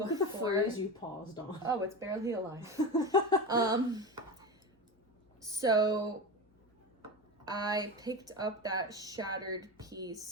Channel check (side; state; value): both; normal; correlation 0.24